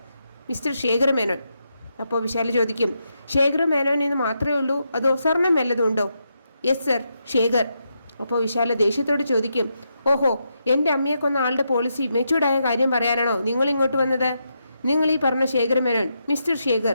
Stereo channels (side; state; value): both; inverted; correlation -0.83